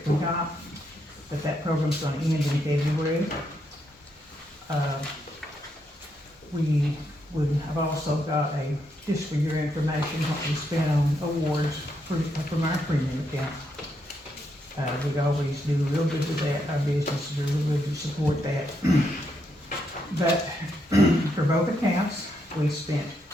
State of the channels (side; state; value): both; normal; correlation 0.79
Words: we got, but that program's gonna end in February. I've also got just for your information, what we spent on awards from our premium account. We always do real good with that, our businesses are real good to support that. But for both accounts, we spent